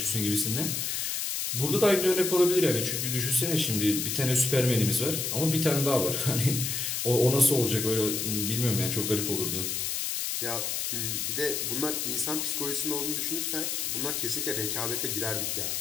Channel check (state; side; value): noise; left; hiss, 1 dB below the sound